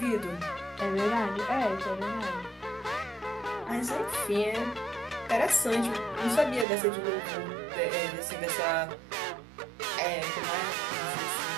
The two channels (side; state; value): left; drops out; at 6.7 s